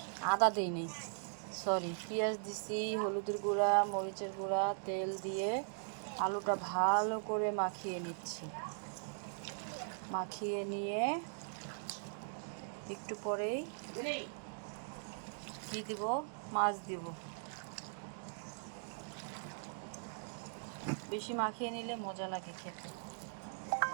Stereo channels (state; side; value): silent; left; digital silence